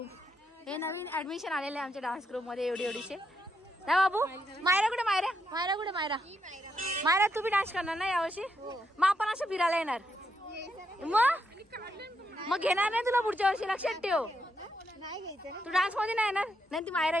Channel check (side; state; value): both; normal; correlation 0.80